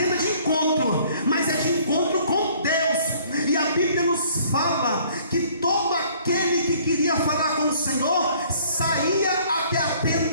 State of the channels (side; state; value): both; inverted; correlation -0.58